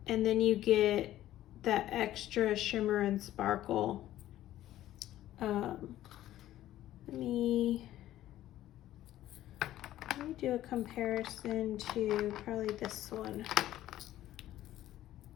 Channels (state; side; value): quieter; right; 13.6 dB